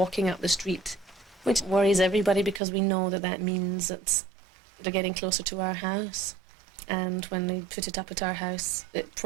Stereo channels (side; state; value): left; drops out; at 2.6 s